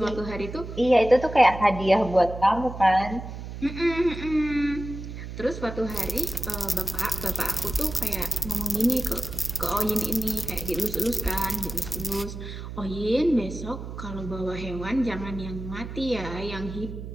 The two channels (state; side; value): noise; right; hum, 9 dB below the sound